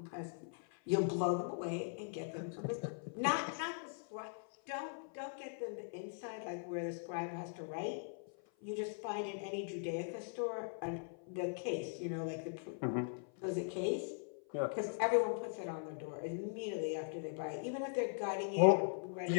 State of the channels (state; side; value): silent; right; 51 dB below the other